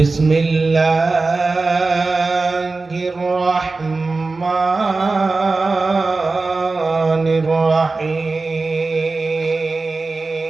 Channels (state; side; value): quieter; left; 3.7 dB